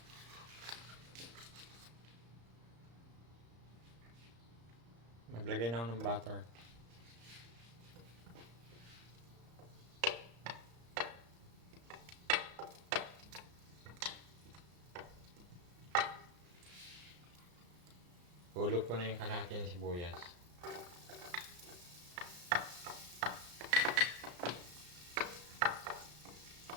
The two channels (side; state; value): left; late; 34 ms